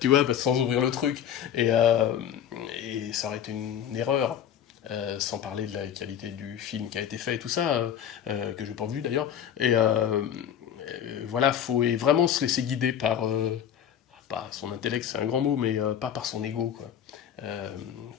tu vois, sans ouvrir le truc. Et, euh, et ça aurait été une erreur. Sans parler de la qualité du film qui a été fait et tout ça, que je n'ai pas vu d'ailleurs. Voilà, faut vraiment se laisser guider par, pas son intellect, c'est un grand mot, mais pas par son ego, quoi.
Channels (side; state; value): right; quieter; 9.4 dB